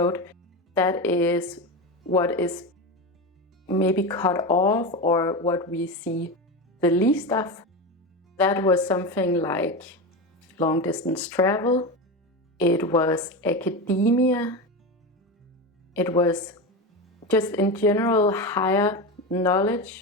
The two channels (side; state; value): both; normal; correlation 0.20